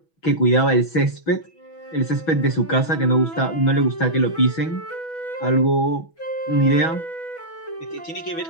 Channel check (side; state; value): right; late; 6.1 ms